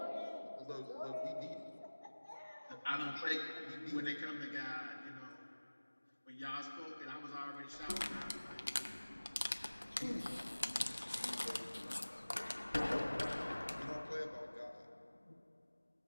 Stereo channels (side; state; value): both; inverted; correlation -1.00